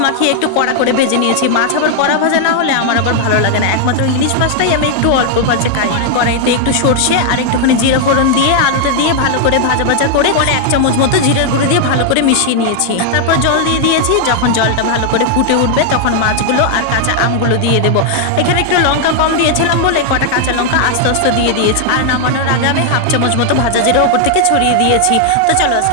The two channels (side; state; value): both; different; correlation 0.00